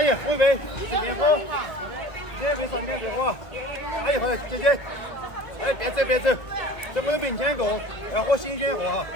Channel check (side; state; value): right; late; 1.4 ms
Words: 姨，喝一杯，点火，点杯上点别火。阿姨，好的，姐姐，哎，别走别走，在我的面前过，要喝新鲜货哈。